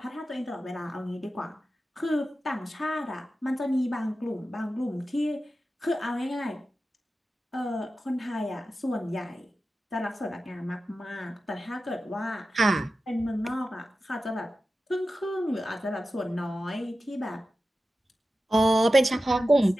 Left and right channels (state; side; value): normal; both; correlation 0.93